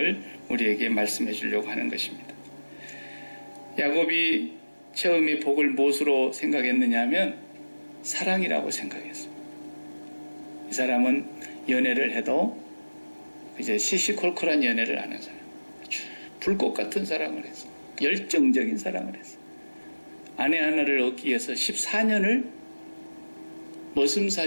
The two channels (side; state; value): both; inverted; correlation -1.00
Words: 우리에게 말씀해 주려고 하는 것입니다. 야곱이 처음에 복을 무엇으로 생각했느냐 하면 사랑이라고 생각했습니다. 이 사람은 연애를 해도 이제 시시콜콜한 연애를 하는 사람, 불꽃 같은 사랑을 했어. 열정적인 사랑을 했어. 아내 하나를 얻기 위해서 14년을